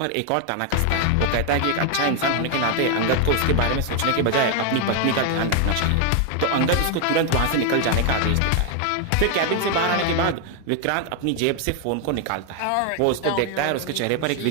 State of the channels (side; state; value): both; different; correlation 0.00